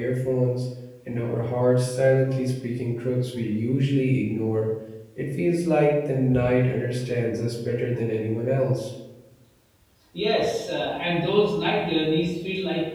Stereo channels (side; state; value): both; identical; correlation 1.00